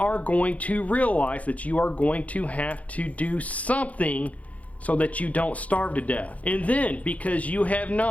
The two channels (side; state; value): right; late; 0.068 ms